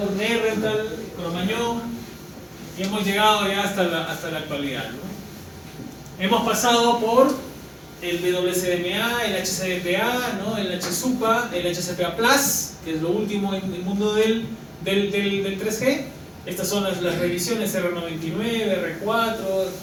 Nerental, Cromañón y hemos llegado ya hasta la actualidad, ¿no? Hemos pasado por el WCDMA, el HCDPA, ¿no? El HSUPA, el HCPA Plus, que es lo último en el mundo del 3G. Estas son las revisiones R99, R4,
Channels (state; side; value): identical; both; correlation 1.00